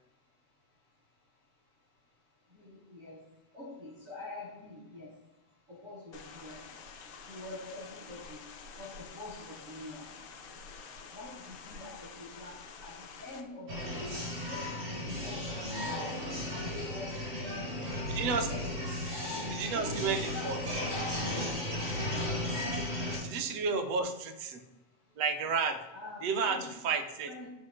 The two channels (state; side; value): late; left; 8.0 ms